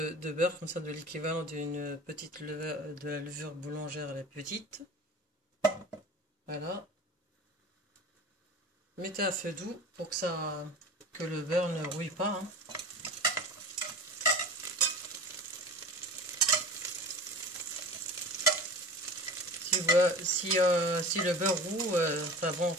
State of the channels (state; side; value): normal; both; correlation 0.36